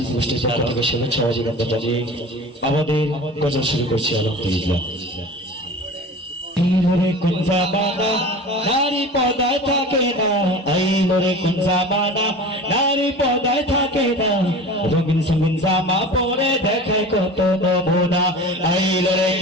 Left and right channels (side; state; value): both; normal; correlation 0.36